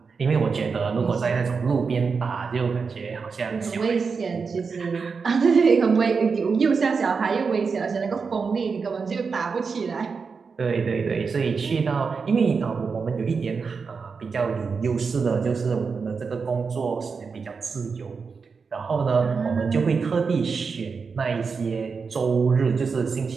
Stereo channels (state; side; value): quieter; left; 5.2 dB